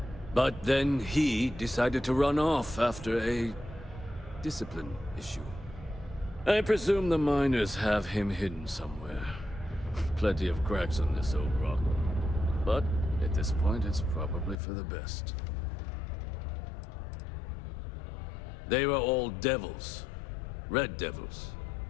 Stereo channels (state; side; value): drops out; right; at 14.6 s